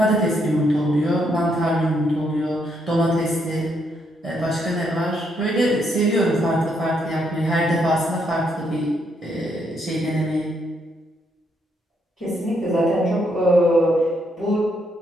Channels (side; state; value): both; normal; correlation 0.75